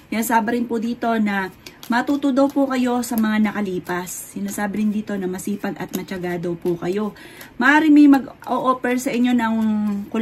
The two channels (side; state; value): both; identical; correlation 1.00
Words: Sinasabi rin po dito na matuto daw po kayo sa mga nakalipas. Sinasabi rin dito na masipag at matyaga daw po kayo. Maaaring may mag-o-offer sa inyo ng